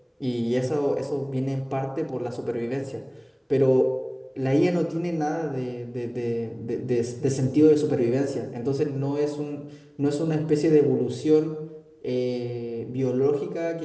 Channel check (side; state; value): both; identical; correlation 1.00